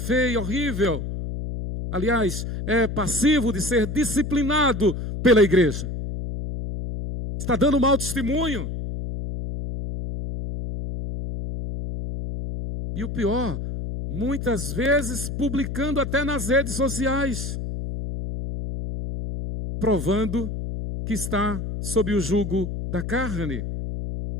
horrível. Aliás, é passivo de ser disciplinado pela igreja. Está dando mau testemunho. E o pior, muitas vezes publicando até nas redes sociais, provando que está sob o jugo da carne.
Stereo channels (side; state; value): left; noise; hum, 5 dB below the sound